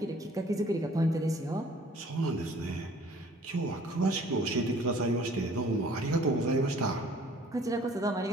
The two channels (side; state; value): both; normal; correlation 0.54